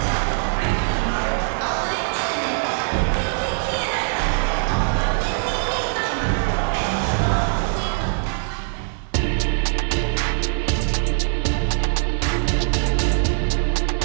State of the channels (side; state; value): left; silent; digital silence